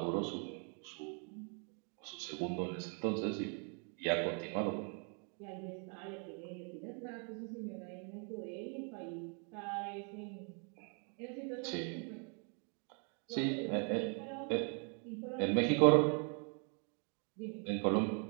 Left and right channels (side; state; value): left; quieter; 39.3 dB